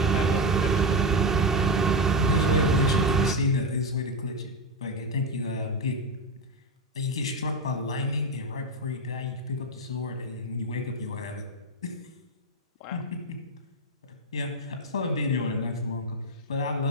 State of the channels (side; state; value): both; normal; correlation 0.11